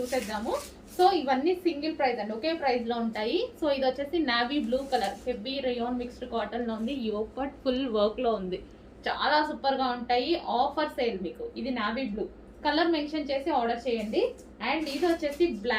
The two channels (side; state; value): both; identical; correlation 1.00